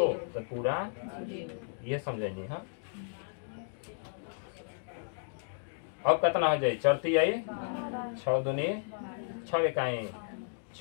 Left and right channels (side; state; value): right; silent; digital silence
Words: तो पूरा ये समझेंगे। हाँ, अब कितना हो जाए? चरती आई 6 दूनी 6 इकाई